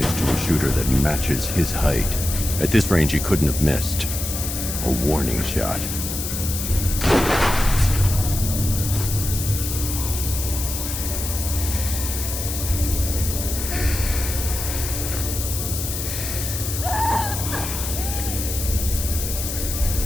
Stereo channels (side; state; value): left; noise; hiss, 5 dB below the sound